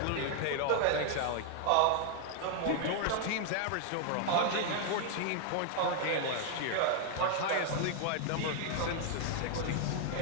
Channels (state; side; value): different; both; correlation 0.00